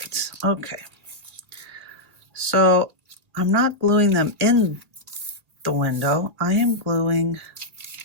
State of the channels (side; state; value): left; late; 1.8 ms